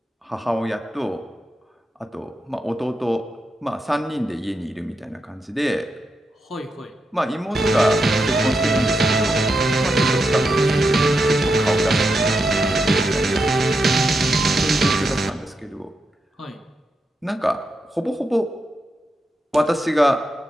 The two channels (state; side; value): normal; both; correlation 0.85